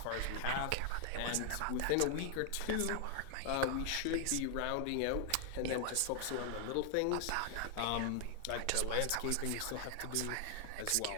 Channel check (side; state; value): both; different; correlation 0.00